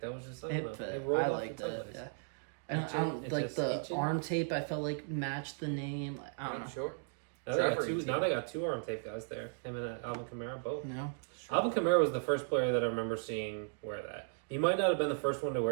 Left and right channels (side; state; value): left; silent; digital silence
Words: was just I don't it know. fit. rolled I off liked the tongue it. nice. Yeah. I don't like the arm tape. I felt like matched the name. Like, I don't know. Sure. Now Trevor they, got two, Etienne. now they got 2 arm tape guys there. Him and Alvin Kamara both. No. Alvin Kamara was the first player that I remember seeing wear that. He might not have been the first one to